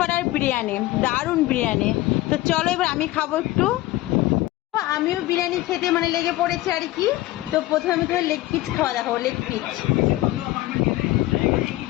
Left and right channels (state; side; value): quieter; right; 17.3 dB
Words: বিরিয়ানি, দারুণ বিরিয়ানি। তো চলো এবার আমি খাবো একটু। আমিও বিরিয়ানি খেতে লেগে পড়েছে আর কি। তো প্রথমে আমি তোমার লেগ পিস খাওয়া দেখাবো। লেগ পিস